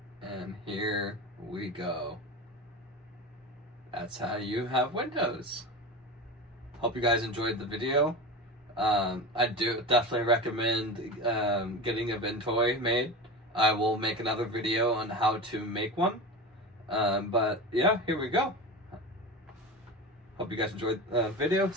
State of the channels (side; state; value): both; normal; correlation 0.27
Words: And here we go. That's how you have Windows. Hope you guys enjoyed the video. I do definitely recommend getting a Ventoy made. I will make another video on how to make one. But yeah, here we go. Hope you guys enjoyed the video.